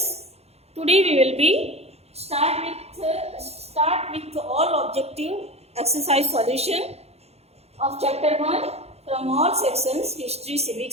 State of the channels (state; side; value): late; left; 0.30 ms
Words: today we will be start with all objective exercise solution of chapter 1 from all sections history,